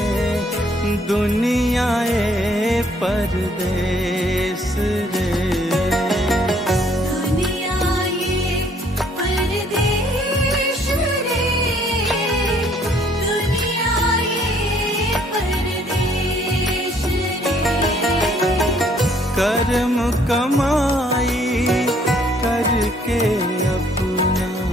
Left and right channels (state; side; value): normal; both; correlation 0.64